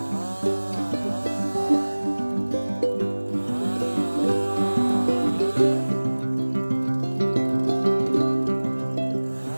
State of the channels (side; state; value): both; inverted; correlation -1.00